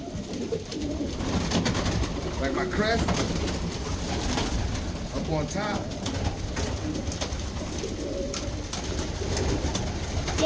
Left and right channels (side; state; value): both; identical; correlation 1.00